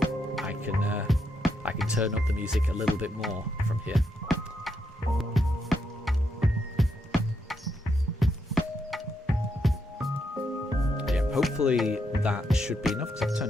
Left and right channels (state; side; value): normal; both; correlation 0.80